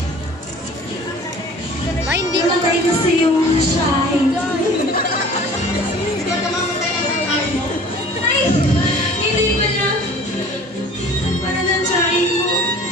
Ma, hindi ka matay kasi yung shine. Ay, hindi pa na. Para ng shine mo.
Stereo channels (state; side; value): normal; both; correlation 0.46